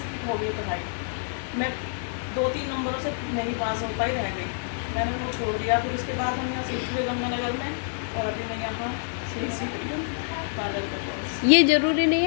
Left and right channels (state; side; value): silent; right; digital silence